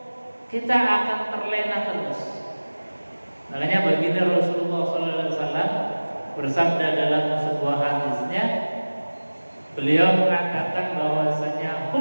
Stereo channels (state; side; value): inverted; both; correlation -1.00